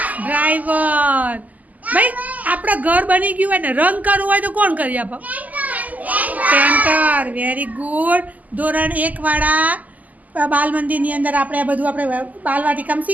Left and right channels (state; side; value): late; left; 0.078 ms